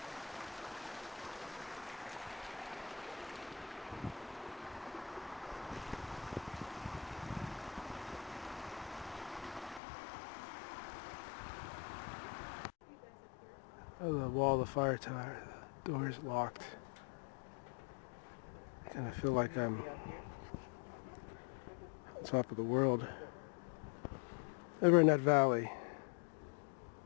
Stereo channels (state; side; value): drops out; right; at 9.8 s